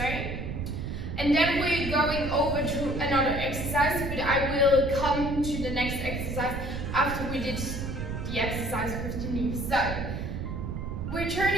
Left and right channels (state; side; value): noise; right; rumble, 4 dB below the sound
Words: And then we're going over to another exercise, but I will come to the next exercise after we did the exercise with the knee. So we're